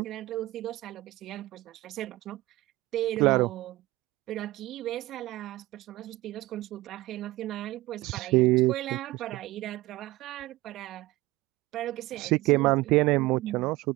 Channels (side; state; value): left; quieter; 18.8 dB